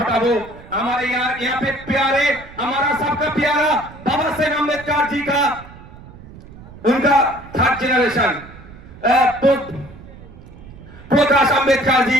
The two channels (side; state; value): right; noise; rumble, 18 dB below the sound